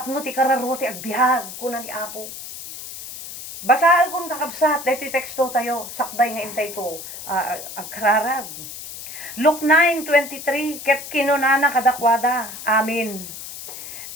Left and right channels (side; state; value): left; noise; hiss, 11 dB below the sound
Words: ti kararo ti agbihag, kuna ni Apo. Basaan kong kakabsat, dito teksto tayo, sakbay nga intay to, agkararag. Luke 9:23, ket kinunana kadakwada, amin.